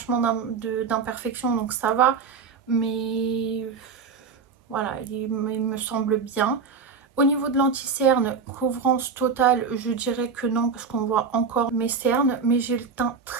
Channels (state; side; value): quieter; left; 5.5 dB